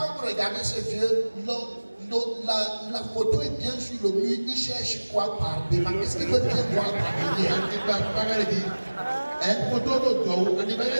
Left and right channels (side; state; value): both; inverted; correlation -1.00